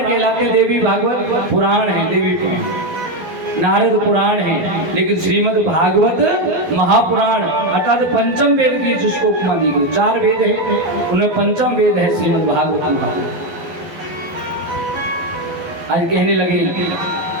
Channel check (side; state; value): left; late; 12 ms